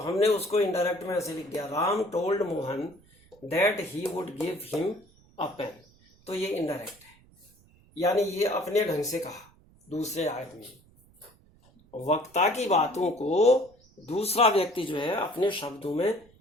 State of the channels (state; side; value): noise; right; rumble, 29 dB below the sound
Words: उसको इनडायरेक्ट में ऐसे लिख दिया, Ram told Mohan that he would give him a pen. तो ये इनडायरेक्ट है, यानी ये अपने ढंग से कहा दूसरे आदमी। वक्ता की बातों को दूसरा व्यक्ति जो है अपने शब्दों में